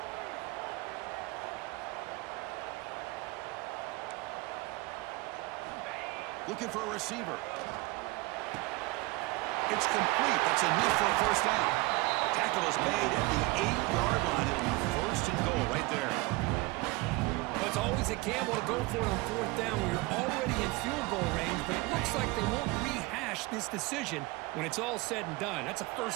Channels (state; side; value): quieter; left; 22.6 dB